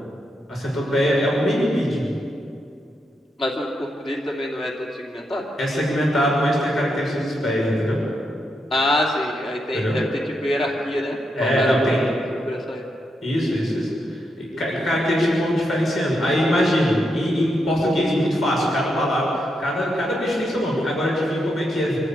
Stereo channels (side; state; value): both; normal; correlation 0.82